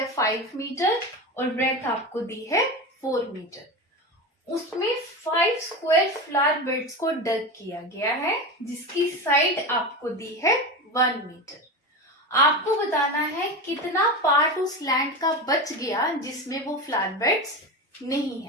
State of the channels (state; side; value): normal; both; correlation 0.23